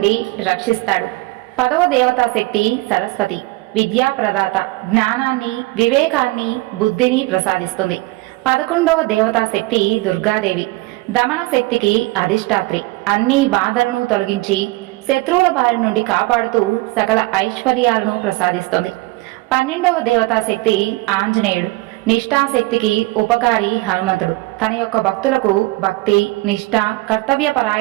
రక్షిస్తాడు. పదవ దేవతా శక్తి సరస్వతి, విద్యాప్రదాత. జ్ఞానాన్ని, వివేకాన్ని, బుద్ధిని ప్రసాదిస్తుంది. 11వ దేవతా శక్తి దుర్గాదేవి, దమన శక్తికి అధిష్టాత్రి. అన్ని బాధలను తొలగించి శత్రువుల బారి నుండి కాపాడుతూ సకల ఐశ్వర్యాలను ప్రసాదిస్తుంది. 12వ దేవతా శక్తి ఆంజనేయుడు, నిష్ఠాశక్తికి ఉపకారి హనుమంతుడు. తన యొక్క భక్తులకు భక్తి, నిష్ఠ,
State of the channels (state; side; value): quieter; left; 21.2 dB